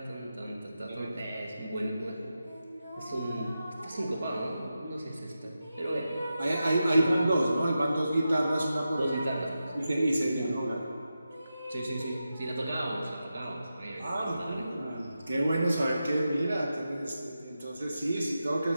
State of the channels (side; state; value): both; inverted; correlation -0.90